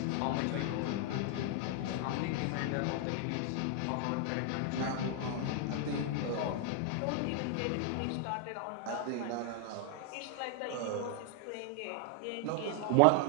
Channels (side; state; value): both; different; correlation 0.00